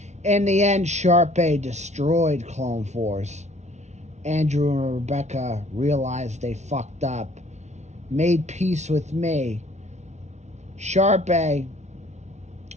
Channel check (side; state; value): left; late; 0.33 ms